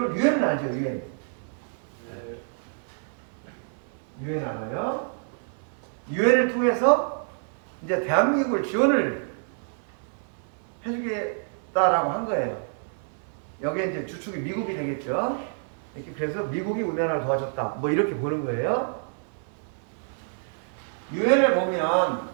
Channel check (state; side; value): silent; left; 60 dB below the other